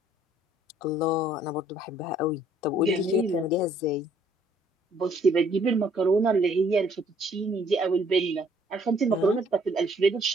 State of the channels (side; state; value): both; normal; correlation 0.62